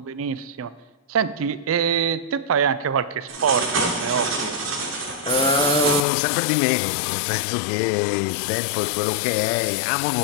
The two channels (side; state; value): right; drops out; at 6.1 s